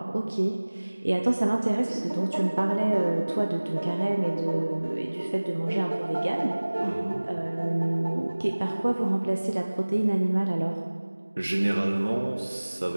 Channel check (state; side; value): inverted; both; correlation -1.00